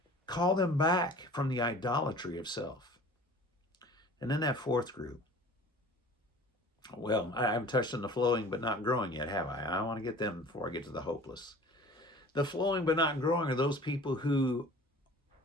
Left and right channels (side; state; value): both; normal; correlation 0.45